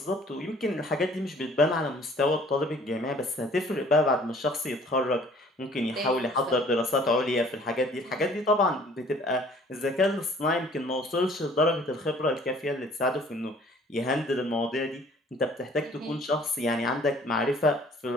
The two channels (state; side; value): normal; both; correlation 0.54